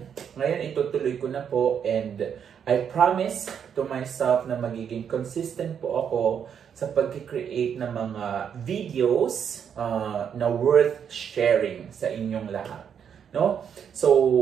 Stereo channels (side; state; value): left; quieter; 7.9 dB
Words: ngayon itutuloy ko na po and I promise to myself na magiging consistent po ako sa pag-create ng mga videos na worth sharing sa inyong lahat. No?